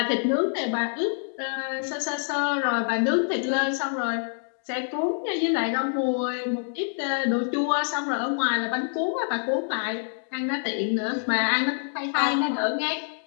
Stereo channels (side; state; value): right; silent; digital silence